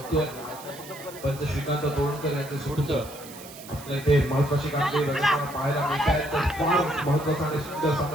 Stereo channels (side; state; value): right; noise; hiss, 16 dB below the sound